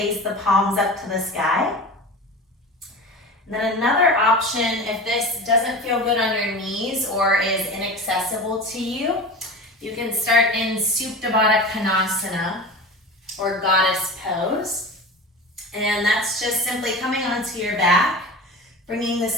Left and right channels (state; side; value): normal; both; correlation 0.31